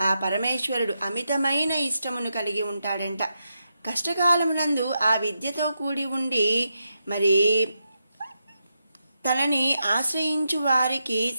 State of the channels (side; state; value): both; inverted; correlation -0.85